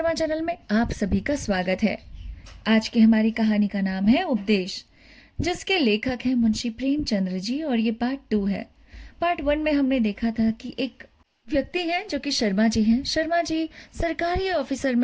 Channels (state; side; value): identical; both; correlation 1.00